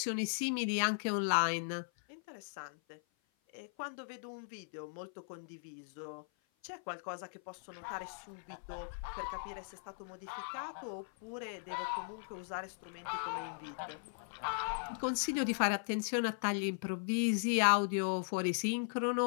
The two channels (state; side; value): silent; right; 52 dB below the other